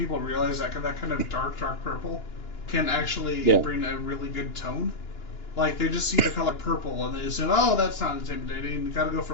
realize that kind of dark purple can actually bring a really good tone. Like, they just see the color purple, and they say, oh, that's not intimidating, you gotta go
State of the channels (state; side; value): late; right; 2.9 ms